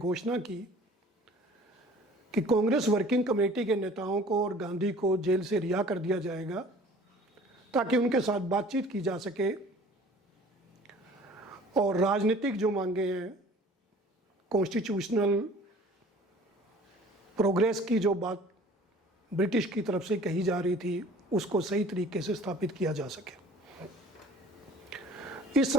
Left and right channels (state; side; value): normal; both; correlation 0.49